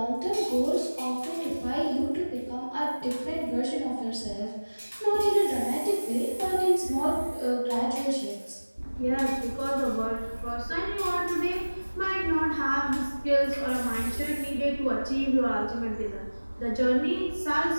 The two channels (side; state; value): both; inverted; correlation -1.00